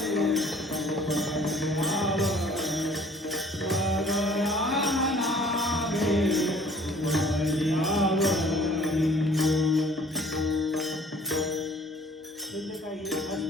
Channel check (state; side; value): normal; both; correlation 0.53